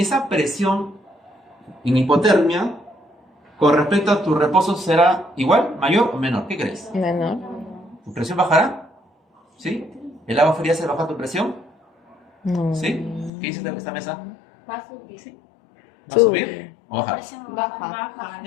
presión en hipotermia, con respecto a tu reposo, ¿será igual, mayor o menor? ¿Qué crees? Menor. ¿Tu presión bajará? ¿Sí? ¿El agua fría se baja tu presión? No. ¿Sí? ¿Qué dice esta mesa? Va a subir. ¿Va a subir o bajar?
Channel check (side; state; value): right; drops out; at 13.3 s